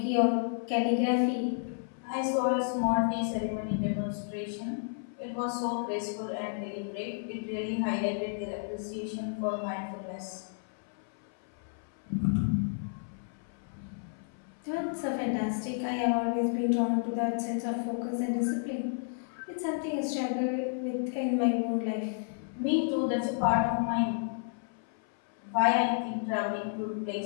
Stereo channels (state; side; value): silent; right; 57 dB below the other